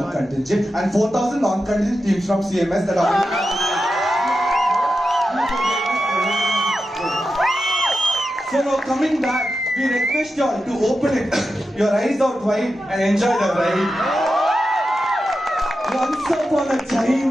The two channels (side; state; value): both; normal; correlation 0.90